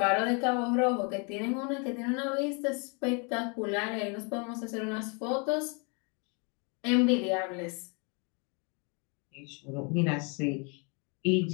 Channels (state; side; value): quieter; right; 34.5 dB